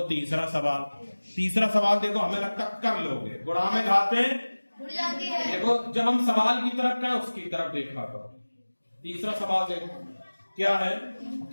तीसरा सवाल, तीसरा सवाल देखो, हमें लगता कर लोगे, गुणा में घाते देखो, जब हम सवाल की तरफ गए उसकी तरफ देखा करो। तीसरा सवाल देखो क्या है,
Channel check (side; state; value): both; inverted; correlation -1.00